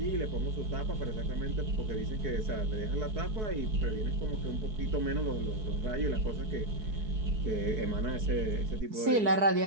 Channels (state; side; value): late; left; 4.6 ms